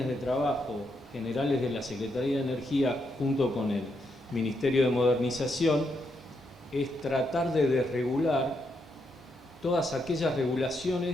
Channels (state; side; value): normal; both; correlation 0.80